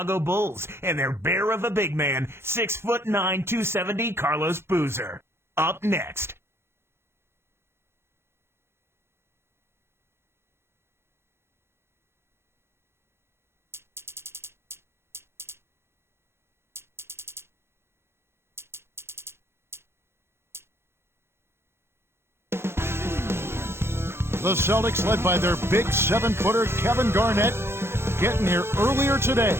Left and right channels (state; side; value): late; left; 0.12 ms